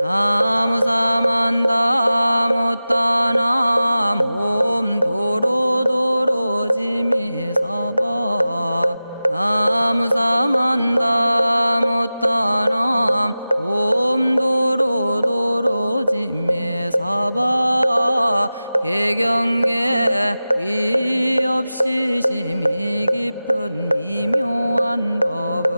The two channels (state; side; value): inverted; both; correlation -0.96